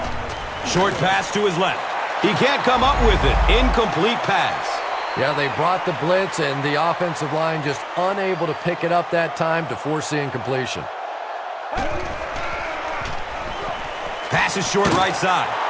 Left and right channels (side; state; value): both; identical; correlation 1.00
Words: Short pass to his left. He can't come up with it. Incomplete pass. Yeah, they brought the blitz, and the offensive line just unable to pick it up that time to force the incompletion. Pass is short right side.